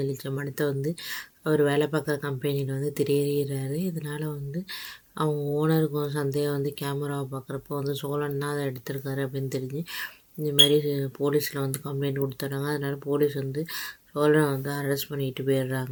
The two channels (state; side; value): identical; both; correlation 1.00